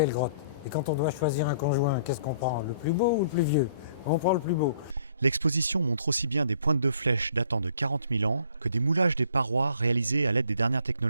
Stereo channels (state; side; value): inverted; both; correlation -0.59